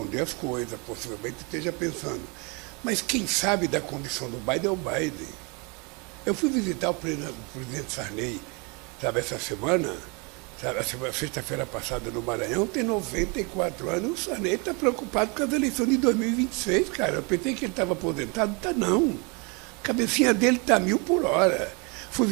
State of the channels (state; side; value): quieter; left; 31.2 dB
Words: as coisas, possivelmente esteja pensando. Mas quem sabe da condição do Biden é o Biden. Eu fui visitar o presidente Sarney, sabe, essa semana, sabe, sexta-feira passada no Maranhão, tem 94 anos, o Sarney está preocupado com as eleições de 2026, cara. Eu pensei que ele estava aposentado, está não. A cabecinha dele está 1000 por hora. Fui